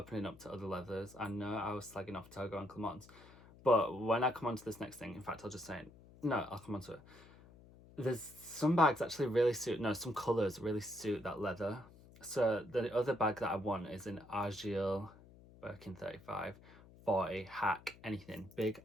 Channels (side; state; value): left; noise; hum, 22 dB below the sound